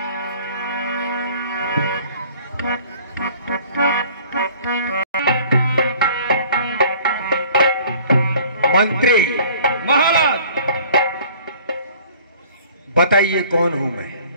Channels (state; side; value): inverted; both; correlation -0.51